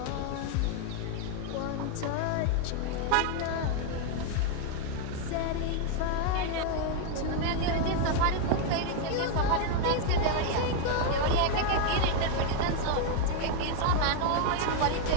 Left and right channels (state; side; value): different; both; correlation 0.01